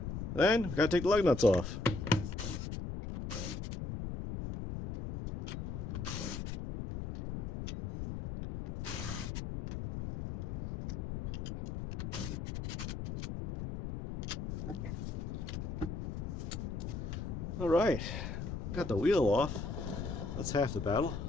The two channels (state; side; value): noise; left; rumble, 4 dB below the sound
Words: Then, we got to take the lug nuts off. All right, got the wheel off. That's half the battle.